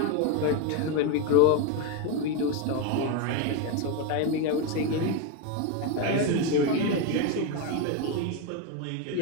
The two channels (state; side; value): different; both; correlation 0.03